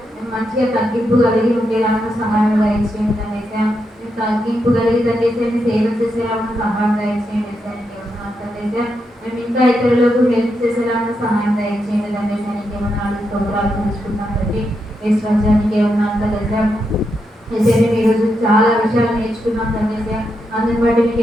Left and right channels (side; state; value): both; normal; correlation 0.83